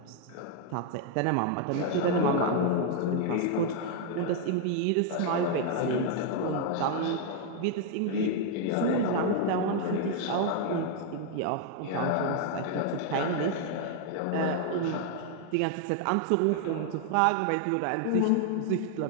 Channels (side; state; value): both; different; correlation 0.00